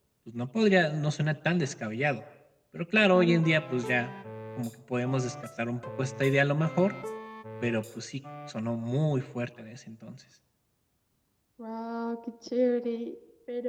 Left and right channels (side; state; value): both; identical; correlation 1.00